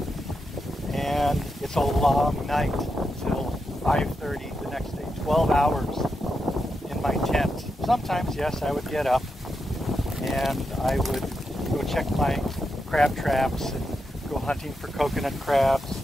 and it's a long night until 5:30 the next day. 12 hours in my tent. Sometimes, yes, I would get up and I would go check my crab traps and go hunting for coconut crabs,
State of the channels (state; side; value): normal; both; correlation 0.86